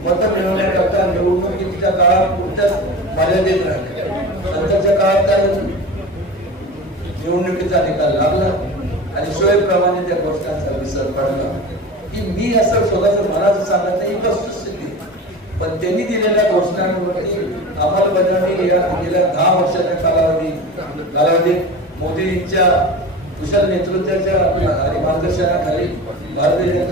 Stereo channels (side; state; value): both; normal; correlation 0.31